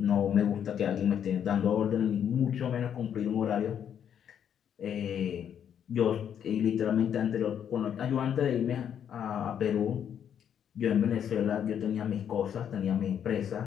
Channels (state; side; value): quieter; right; 8.8 dB